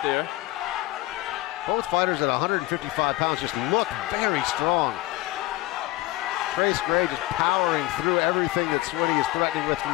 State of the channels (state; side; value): quieter; right; 18.1 dB